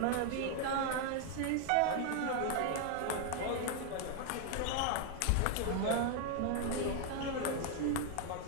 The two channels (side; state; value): both; different; correlation 0.00